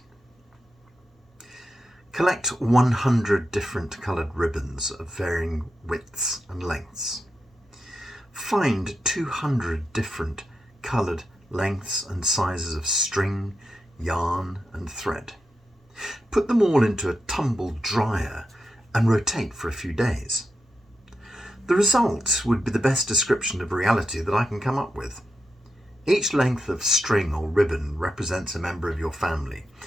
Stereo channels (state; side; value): normal; both; correlation 0.87